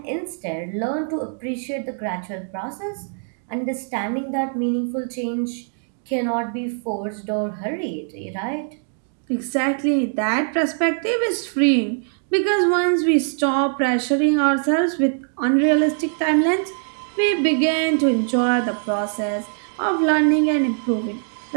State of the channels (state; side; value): silent; left; 62 dB below the other